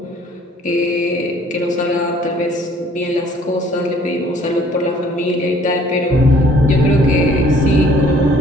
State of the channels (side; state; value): both; normal; correlation 0.57